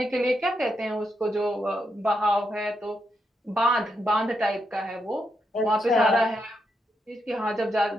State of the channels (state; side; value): normal; both; correlation 0.82